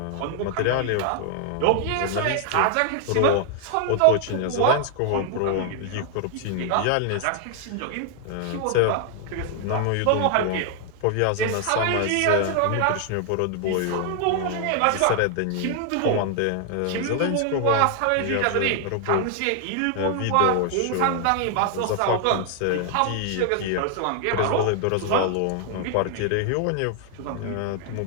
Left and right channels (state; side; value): different; both; correlation 0.00